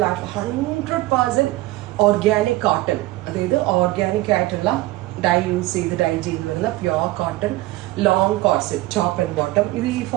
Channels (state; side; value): quieter; left; 18.3 dB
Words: ആയിട്ടുള്ള 100% ഓർഗാനിക് കോട്ടൺ, അതായത് ഓർഗാനിക് ആയിട്ടുള്ള ഡൈ ചെയ്ത് വരുന്ന pure cotton long corset top and bottom. ഇത് ഈ